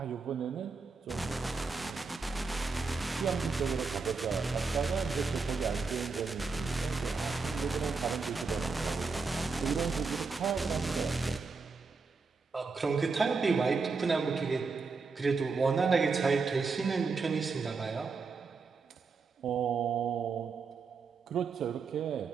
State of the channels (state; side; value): quieter; left; 4.6 dB